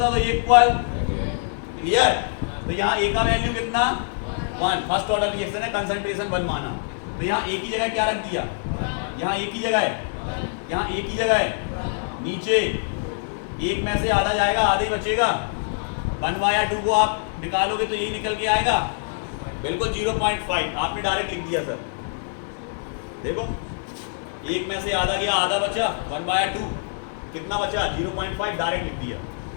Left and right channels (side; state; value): right; silent; digital silence